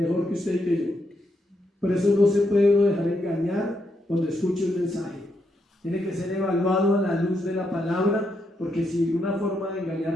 que usted y que yo. Por eso no se puede uno dejar engañar cuando escuche un mensaje. Tiene que ser evaluado a la luz de la palabra, porque si una forma de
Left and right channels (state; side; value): normal; both; correlation 0.80